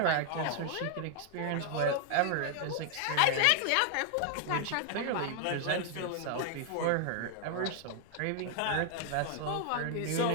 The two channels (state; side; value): different; both; correlation 0.00